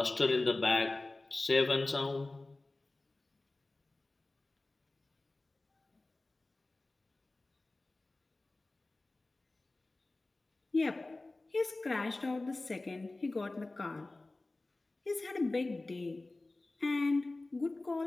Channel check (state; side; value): quieter; right; 3.0 dB